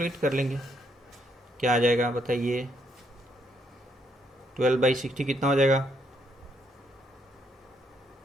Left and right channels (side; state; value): both; normal; correlation 0.73